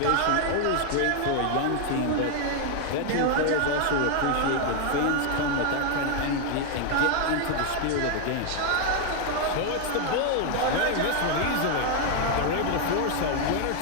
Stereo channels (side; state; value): both; different; correlation 0.00